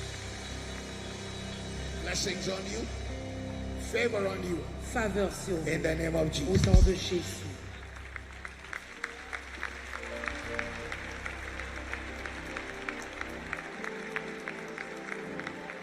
Blessings on you. Favor on you. Faveur sur vous. In the name of Au Jesus. nom de Jésus.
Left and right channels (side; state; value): both; identical; correlation 1.00